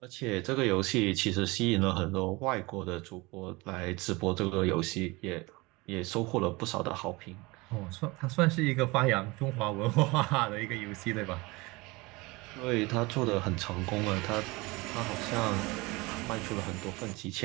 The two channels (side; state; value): left; quieter; 23.8 dB